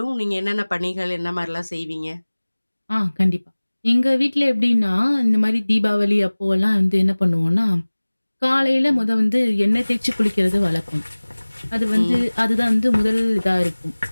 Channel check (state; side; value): inverted; both; correlation -1.00